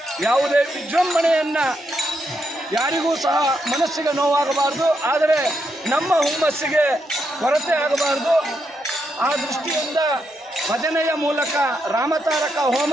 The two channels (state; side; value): normal; both; correlation 0.81